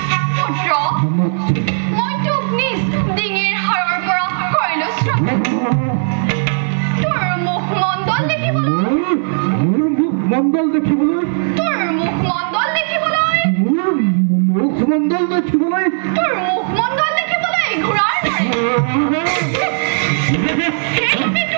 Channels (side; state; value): left; silent; 64 dB below the other